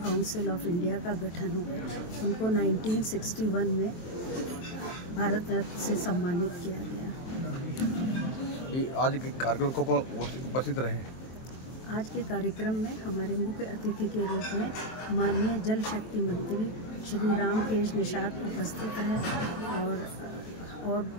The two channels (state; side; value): late; right; 23 ms